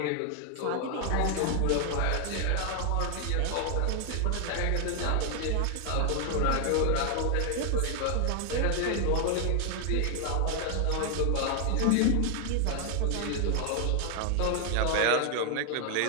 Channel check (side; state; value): both; different; correlation 0.00